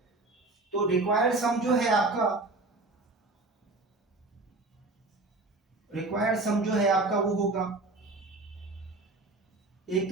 तो रिक्वायर्ड सम जो है आपका, रिक्वायर्ड सम जो है आपका वो होगा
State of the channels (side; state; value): left; quieter; 3.2 dB